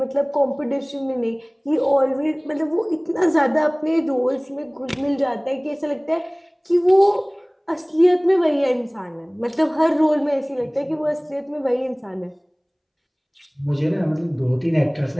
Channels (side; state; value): both; identical; correlation 1.00